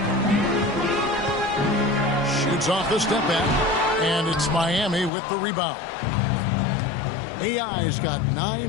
Shoots off the step back. And it's Miami with the rebound. AI's got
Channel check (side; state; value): right; drops out; at 5.1 s